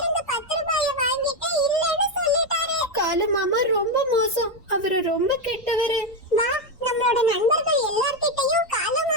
10 ரூபாய வாங்கிட்டு இல்லன்னு சொல்லிட்டாரு. காலு மாமா ரொம்ப மோசம், அவரு ரொம்ப கெட்டவரு. வா, நம்மளோட நண்பர்கள் எல்லார்கிட்டயும் காலு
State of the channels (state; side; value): normal; both; correlation 0.07